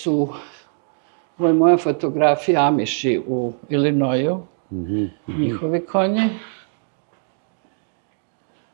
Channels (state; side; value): silent; left; 62 dB below the other